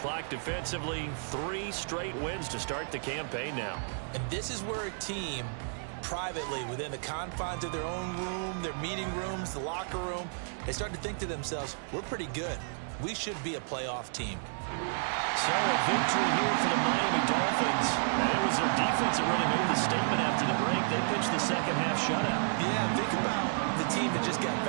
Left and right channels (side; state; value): left; silent; digital silence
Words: defensively. 3 straight wins to start the campaign now. And this is where a team privately, within the confines of their own room, their meeting rooms, the locker room, they start to think to themselves, we're pretty good. We should be a playoff team. So a victory here for the Miami Dolphins. And it was their defense that really made the statement after the break. They pitched the second half shutout. Yeah, think about the team that just got